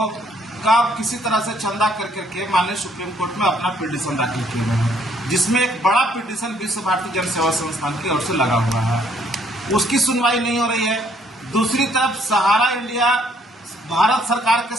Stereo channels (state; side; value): normal; both; correlation 0.66